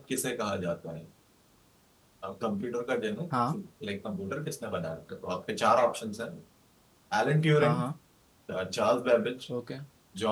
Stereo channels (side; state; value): both; identical; correlation 1.00